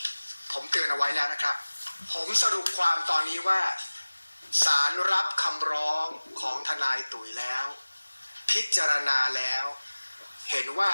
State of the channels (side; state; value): both; inverted; correlation -1.00